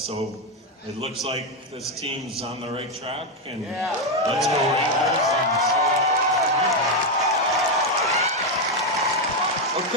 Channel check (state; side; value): normal; both; correlation 0.05